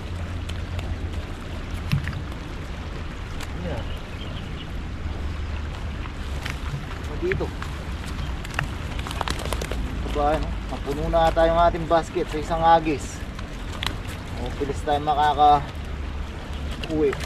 Yan. Dito. Kabayan oh. Mapuno na ata yung ating basket sa isang agis. O, pilis tayo makaka-uwi.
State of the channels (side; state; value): both; identical; correlation 1.00